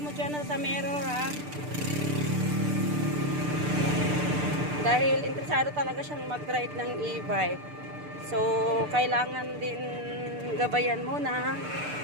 dyan sa mirror Dahil interesado talaga siyang mag-ride ng e-bike. So, kailangan din gabayan muna.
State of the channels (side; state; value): left; late; 6.7 ms